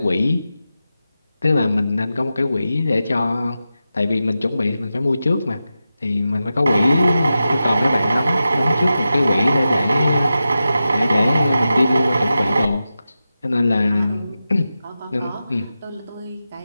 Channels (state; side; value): inverted; both; correlation -0.92